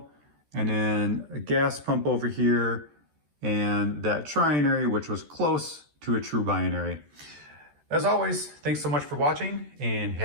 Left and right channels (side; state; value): left; late; 13 ms